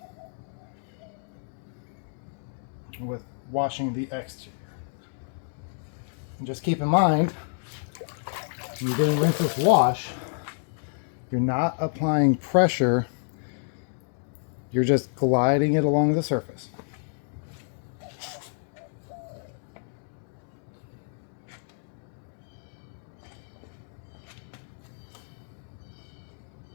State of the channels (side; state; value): right; silent; digital silence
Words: with washing the exterior. And just keep in mind, when you're doing rinseless wash, you're not applying pressure, you're just gliding it along the surface.